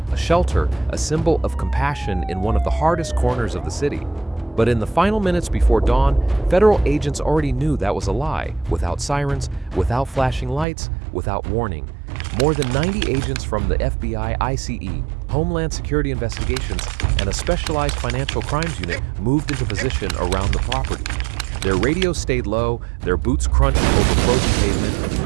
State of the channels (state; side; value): drops out; left; at 10.7 s